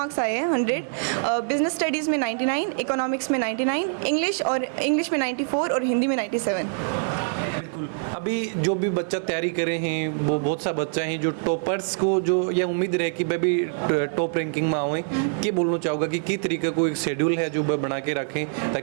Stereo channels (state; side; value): silent; left; digital silence